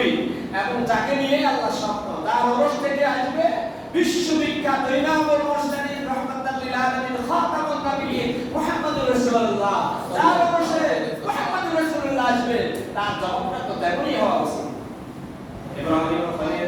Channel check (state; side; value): identical; both; correlation 1.00